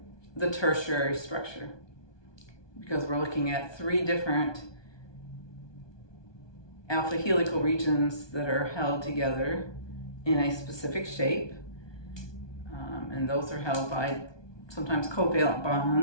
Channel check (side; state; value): right; late; 1.2 ms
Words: the tertiary structure, because we're looking at 3 different alpha helical regions that are held together in a specific shape. And those are held by sometimes covalent